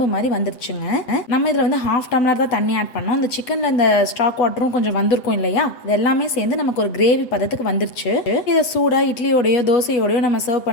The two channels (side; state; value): right; late; 7.9 ms